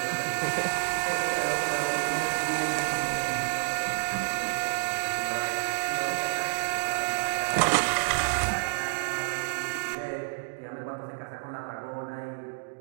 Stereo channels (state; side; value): silent; left; digital silence